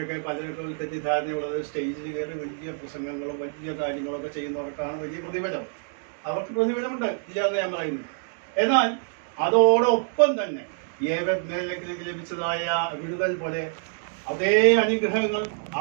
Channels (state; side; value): silent; left; digital silence